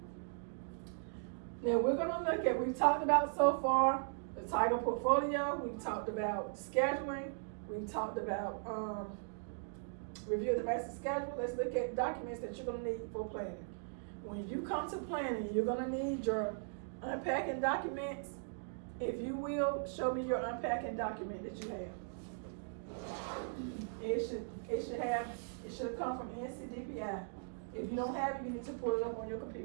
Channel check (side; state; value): left; silent; digital silence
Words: Now we're going to look at, we've talked about so far the Tiger portfolio, we've talked about scheduling, we've talked about review the master schedule. Let's look at documents that you're going to need for planning. when you come to planning, you're gonna need your unpacking documents. If you will, show me your unpacking document that you have. It should have come from NCDPI. If you don't have it, you need to pull it up on your